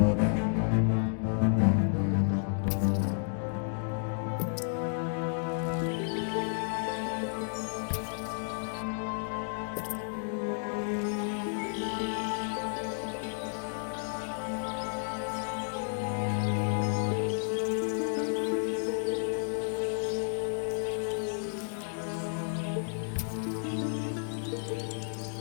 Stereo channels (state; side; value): silent; right; digital silence